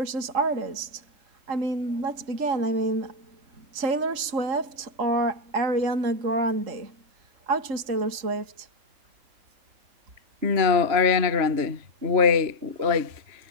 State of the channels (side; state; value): left; late; 3.8 ms